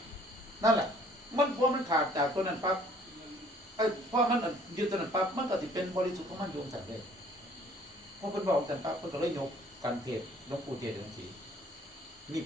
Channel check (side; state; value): both; normal; correlation 0.57